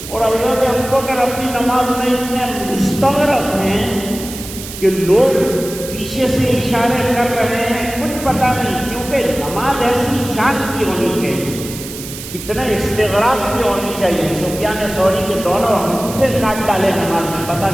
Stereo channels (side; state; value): right; noise; hiss, 11 dB below the sound